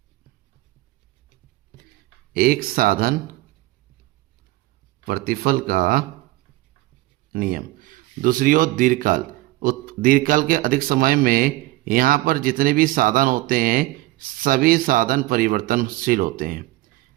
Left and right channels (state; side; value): quieter; left; 19.2 dB